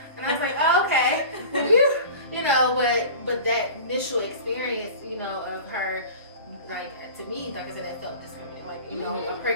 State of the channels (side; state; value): both; inverted; correlation -0.37